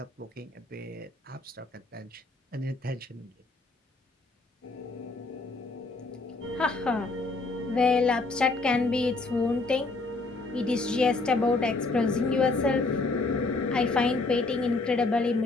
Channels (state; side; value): quieter; right; 3.4 dB